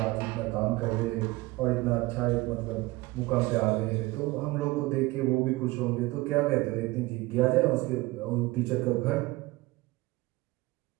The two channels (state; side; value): quieter; left; 20.8 dB